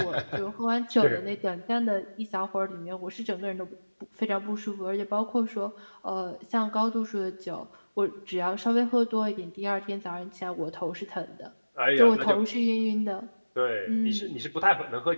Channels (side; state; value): both; inverted; correlation -1.00